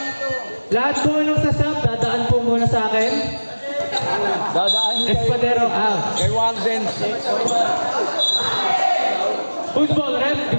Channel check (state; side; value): inverted; both; correlation -1.00